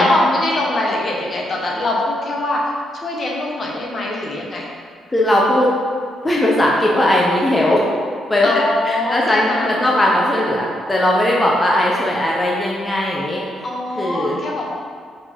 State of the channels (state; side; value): normal; both; correlation 0.80